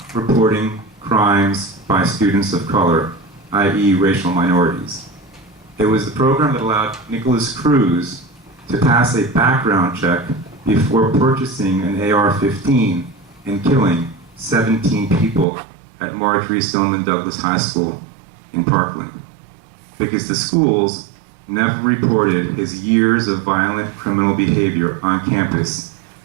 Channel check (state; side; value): drops out; left; at 15.5 s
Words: reporting crimes by students of color, i.e. racial minorities. It was the program that allowed Nicholas Cruz to pass a background check before purchasing an AR-15 and killing 17 people at Marjorie Stoneman Douglas High School in Parkland, because the schools never reported his years of violent criminal behavior on campus